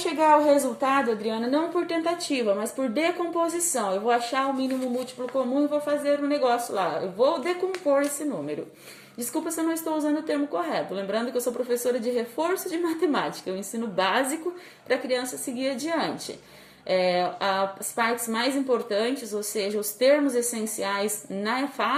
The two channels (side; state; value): both; identical; correlation 1.00